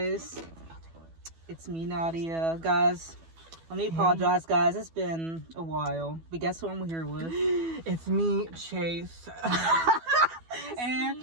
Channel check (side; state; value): left; late; 12 ms